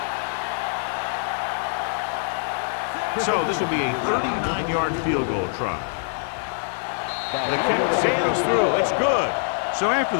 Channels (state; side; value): silent; right; digital silence